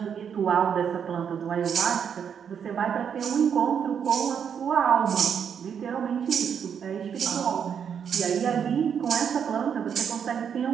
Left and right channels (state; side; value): quieter; left; 7.7 dB